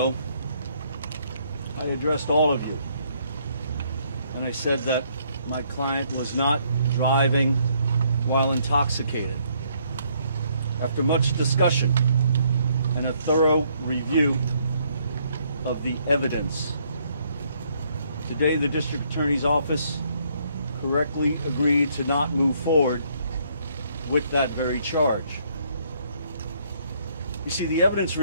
I addressed all of you, and I said that my client was not driving while intoxicated. After much discussion and a thorough review of the evidence, today the District Attorney's Office correctly agreed to not move forward with that very charge. You see, the evidence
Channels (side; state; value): both; inverted; correlation -0.68